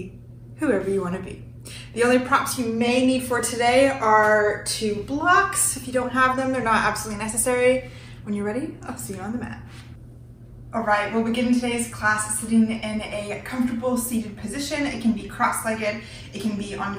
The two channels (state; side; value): identical; both; correlation 1.00